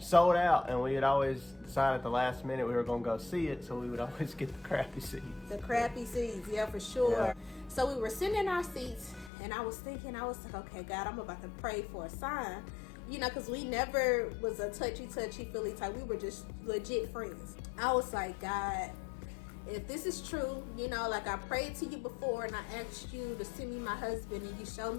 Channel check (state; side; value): drops out; right; at 9.3 s